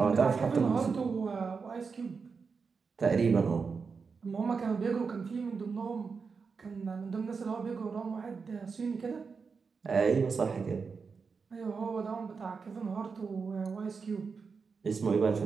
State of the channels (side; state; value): left; quieter; 5.2 dB